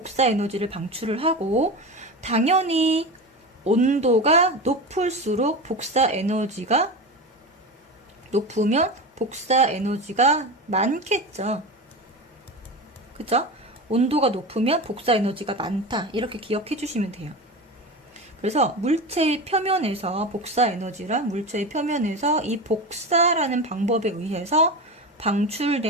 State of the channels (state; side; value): normal; both; correlation 0.25